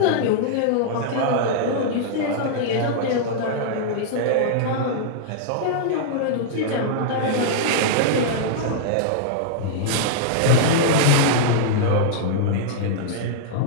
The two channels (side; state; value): both; different; correlation -0.02